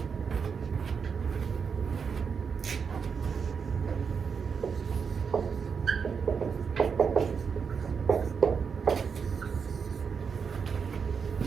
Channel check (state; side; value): quieter; left; 6.1 dB